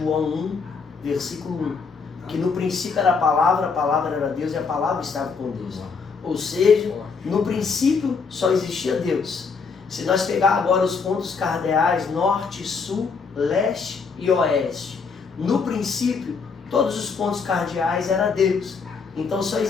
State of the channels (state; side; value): quieter; right; 5.2 dB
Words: 1, versículo 1. Que no princípio era a palavra era Deus e a palavra estava com Deus. Ou seja, no princípio só existia Deus. Se nós pegar agora os pontos cardeais norte, sul, leste e oeste, no princípio todos os pontos cardeais eram Deus. Então só